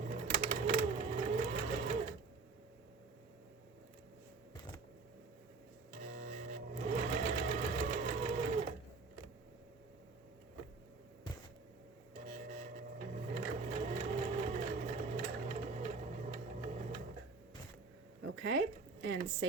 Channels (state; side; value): quieter; left; 4.3 dB